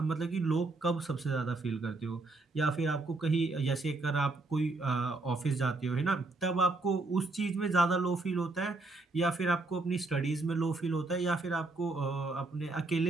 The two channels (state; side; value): quieter; left; 3.3 dB